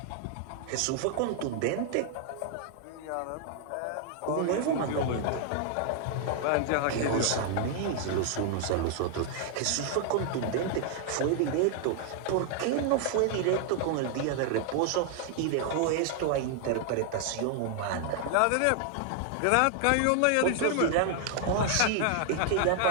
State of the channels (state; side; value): different; both; correlation 0.00